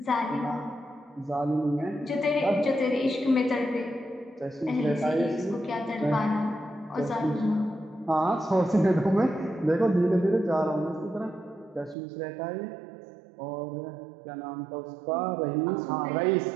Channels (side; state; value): left; drops out; at 12.0 s